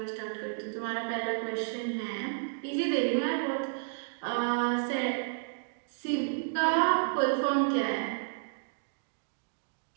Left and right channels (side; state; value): left; silent; digital silence